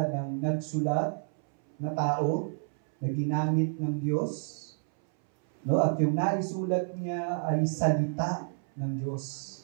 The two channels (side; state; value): left; silent; 58 dB below the other